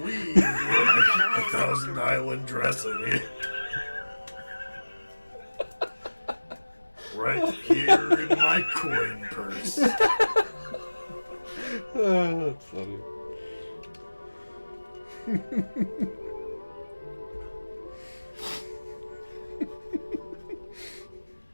what a Thousand Island dressing is. Right here in my coin purse. Oh, that's funny.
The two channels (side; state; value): both; inverted; correlation -1.00